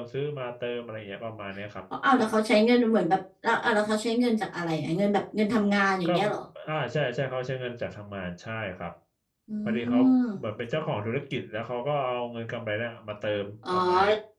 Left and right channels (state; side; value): identical; both; correlation 1.00